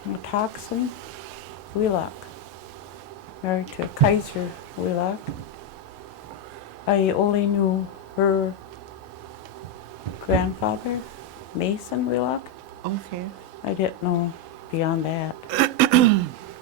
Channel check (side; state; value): both; normal; correlation 0.04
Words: Matoxin Wheelock, married to Kaiser Wheelock. I only knew her grandfather, Mason Wheelock. Okay. I didn't know beyond that.